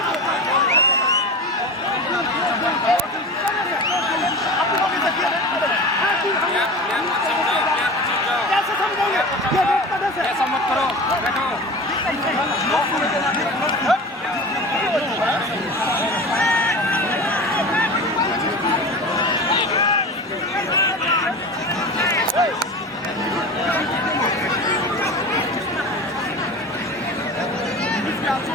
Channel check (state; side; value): normal; both; correlation 0.31